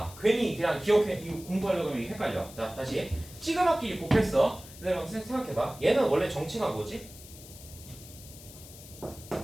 괜히 그냥 기억해. 이거 공부하려고 하면 헷갈려. 자, 다시. 시그마끼리 곱했어. 그럼 생각해봐. 얘는 원래 정체가 뭐지?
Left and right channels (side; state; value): left; noise; hiss, 17 dB below the sound